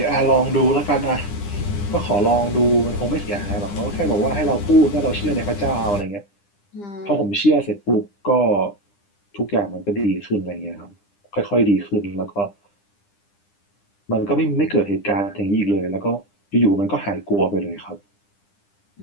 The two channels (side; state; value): right; late; 9.9 ms